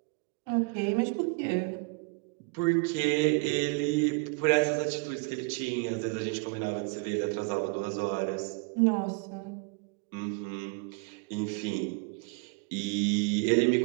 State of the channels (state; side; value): quieter; left; 30.6 dB